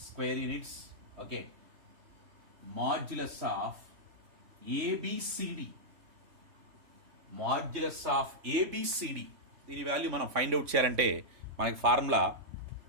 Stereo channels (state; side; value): late; left; 3.5 ms